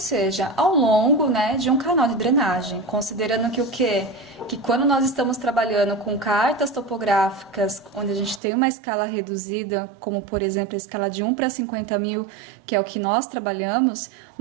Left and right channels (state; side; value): drops out; left; at 8.4 s